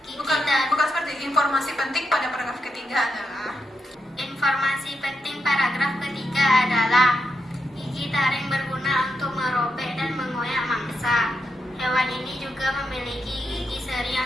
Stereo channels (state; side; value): normal; both; correlation 0.84